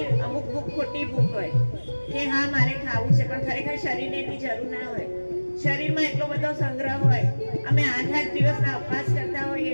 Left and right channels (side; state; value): both; inverted; correlation -1.00